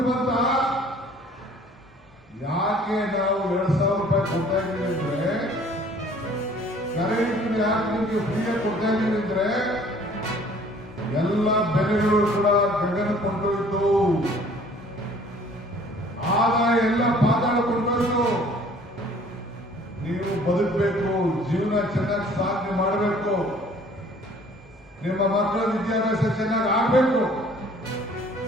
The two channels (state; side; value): normal; both; correlation 0.54